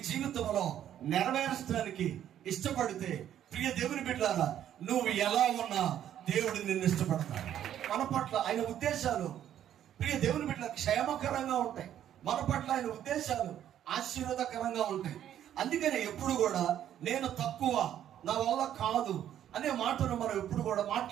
జీవితంలో నెరవేర్చడానికి ఇష్టపడితే, ప్రియ దేవుని బిడ్డలారా, నువ్వు ఎలా ఉన్నా దేవుడు నిన్ను ఇష్టపడతాడు. మన పట్ల ఆయన ఉద్దేశాలు ప్రియ దేవుని బిడ్డల క్షేమకరంగా ఉంటాయి. మన పట్ల ఆయన ఉద్దేశాలు ఆశీర్వాదకరంగా ఉంటాయి. అందుకని ఎప్పుడు కూడా నేను తక్కువ, నా వల్ల కాదు అనే మాటను మనం ఎప్పుడు కూడా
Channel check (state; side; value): quieter; left; 10.7 dB